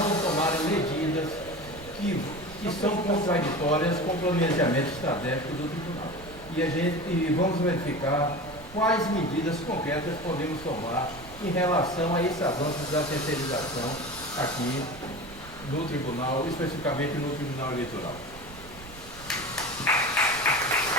tomarem medidas que são contraditórias com o planejamento estratégico do tribunal. E vamos verificar quais medidas concretas podemos tomar em relação a esse avanço da terceirização aqui no tribunal, especificamente no Tribunal Eleitoral.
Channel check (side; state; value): right; noise; rumble, 18 dB below the sound